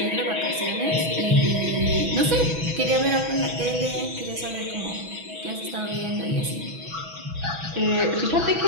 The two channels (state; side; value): late; left; 6.1 ms